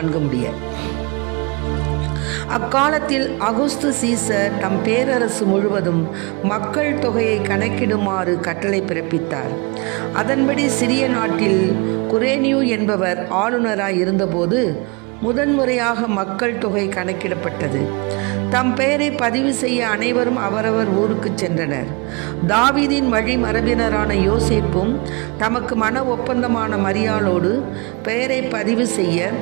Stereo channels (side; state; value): left; quieter; 29.3 dB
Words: முடிய. அக்காலத்தில் அகுஸ்து சீசர் தம் பேரரசு முழுவதும் மக்கள் தொகையை கணக்கிடுமாறு கட்டளை பிறப்பித்தார். அதன்படி சிறிய நாட்டில் குரேனியு என்பவர் ஆளுநராய் இருந்தபோது முதன்முறையாக மக்கள் தொகை கணக்கிடப்பட்டது. தம் பெயரை பதிவு செய்ய அனைவரும் அவரவர் ஊருக்கு சென்றனர். தாவீதின் வழி மரபினரான யோசேப்பும் தமக்கு மன ஒப்பந்தமான மரியாளோடு பெயரை பதிவு செய்ய